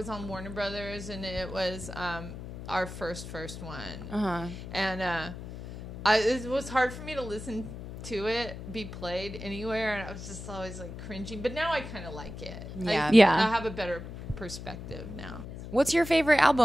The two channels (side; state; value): left; noise; hum, 10 dB below the sound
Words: on Warner Brothers, and it was our first one. And it was hard for me to listen to it be played anywhere, and I was just always like cringing. But now I kind of like it. I have a better perspective now. What's your favorite